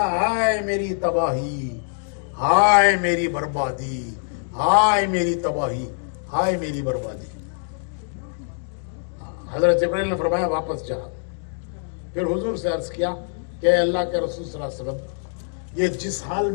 ہائے میری تباہی, ہائے میری بربادی, ہائے میری تباہی, ہائے میری بربادی. حضرت جبرائیل نے فرمایا واپس جا. پھر حضور سے عرض کیا کہ اے اللہ کے رسول صلی اللہ علیہ وسلم, یہ جس حال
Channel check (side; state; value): right; silent; digital silence